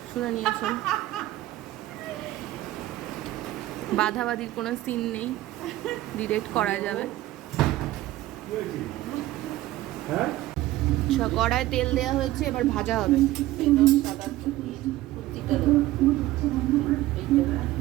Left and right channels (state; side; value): quieter; left; 16.0 dB